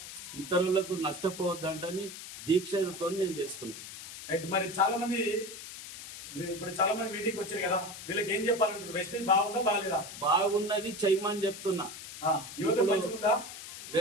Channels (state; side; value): noise; left; hiss, 12 dB below the sound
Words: ఇతరులకు నష్టపోవద్దంటని దీక్షతో నేను చేస్తున్నాను. మరి చాలా మంది మీటింగ్ వచ్చారు కదా, వీళ్ళకి ఏం చెప్పాలంటారు? వెస్టీ బాగుందా బాగాలేదా? బాగున్నది చేయమని చెప్తున్నా. యువత మంచిగుందా?